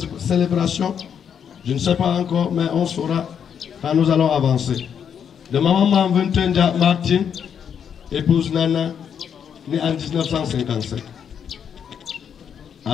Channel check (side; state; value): right; quieter; 7.9 dB